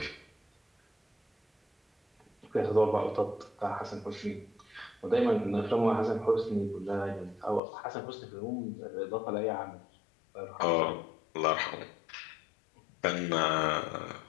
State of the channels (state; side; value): drops out; right; at 7.6 s